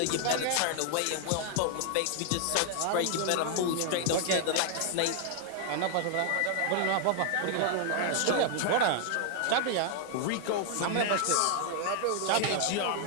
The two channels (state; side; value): different; both; correlation 0.00